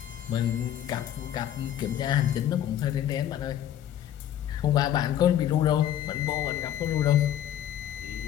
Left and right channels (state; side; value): quieter; right; 11.1 dB